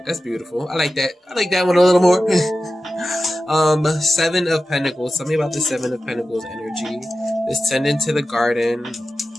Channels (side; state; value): both; normal; correlation 0.94